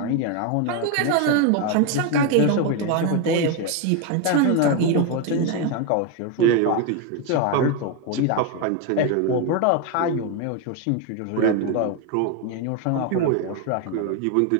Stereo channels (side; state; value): both; different; correlation 0.02